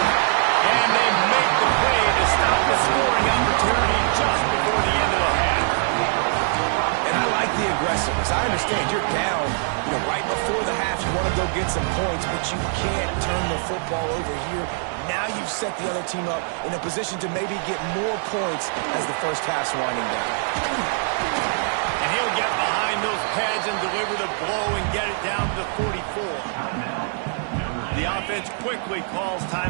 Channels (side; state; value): left; silent; 63 dB below the other